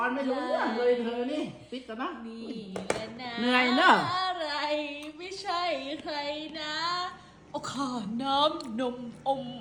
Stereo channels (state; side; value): identical; both; correlation 1.00